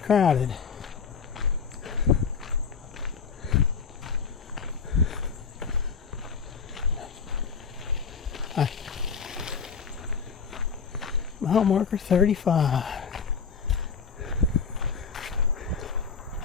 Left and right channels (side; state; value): right; quieter; 5.9 dB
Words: Hi. Mile marker 35.